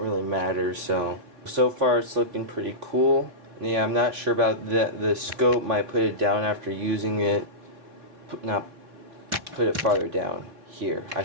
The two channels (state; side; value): late; left; 3.9 ms